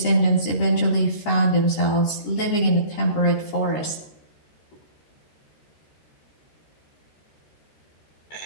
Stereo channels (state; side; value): late; right; 13 ms